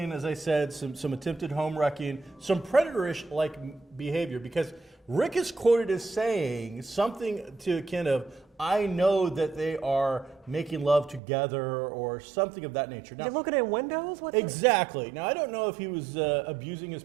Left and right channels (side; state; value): left; drops out; at 11.2 s